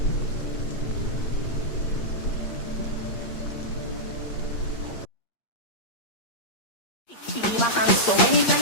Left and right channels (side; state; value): right; late; 8.6 ms